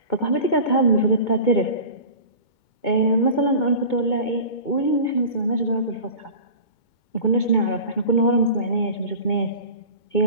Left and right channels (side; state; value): right; late; 2.2 ms